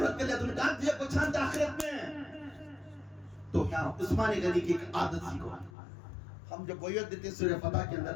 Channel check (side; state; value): right; drops out; at 5.7 s